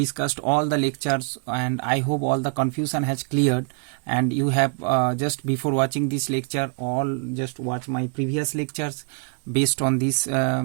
all the lectures, and I hope all the confusion has cleared, and you have just before watching this lecture all just watch my previous lectures based on this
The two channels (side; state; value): left; quieter; 38.1 dB